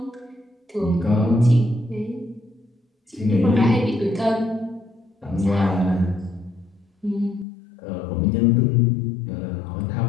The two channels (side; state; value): right; drops out; at 7.5 s